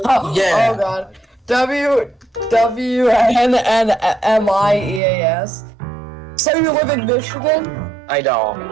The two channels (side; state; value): left; drops out; at 5.0 s